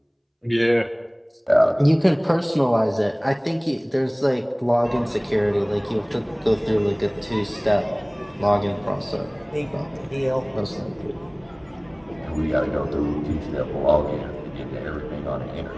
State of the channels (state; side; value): identical; both; correlation 1.00